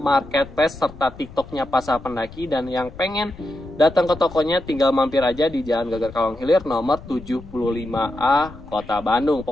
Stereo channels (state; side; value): noise; left; rumble, 18 dB below the sound